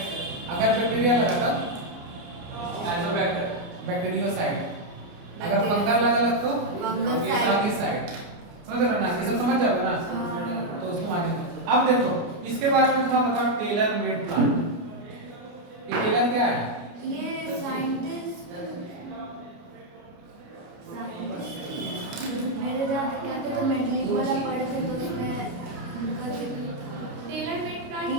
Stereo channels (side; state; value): left; late; 29 ms